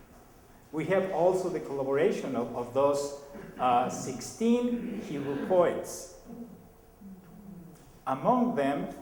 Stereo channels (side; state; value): both; identical; correlation 1.00